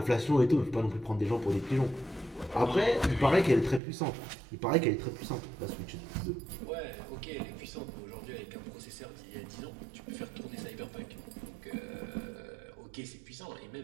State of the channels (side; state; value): left; drops out; at 3.8 s